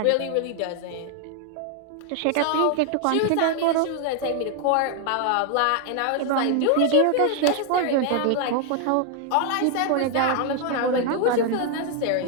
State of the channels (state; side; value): different; both; correlation 0.00